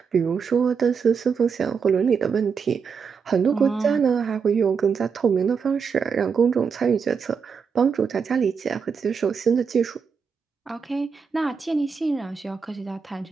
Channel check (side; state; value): left; quieter; 6.0 dB